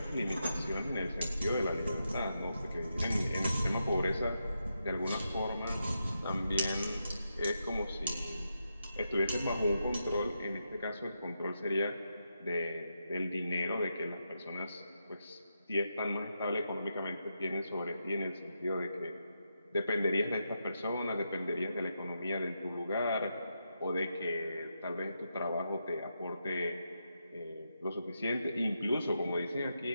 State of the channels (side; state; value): both; inverted; correlation -0.85